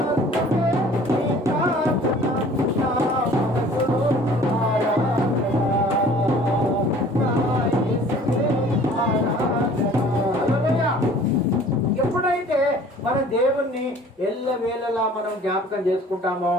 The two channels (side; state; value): both; normal; correlation 0.50